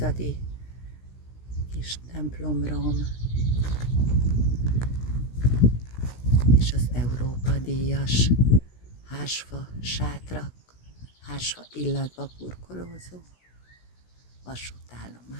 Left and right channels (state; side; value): late; right; 16 ms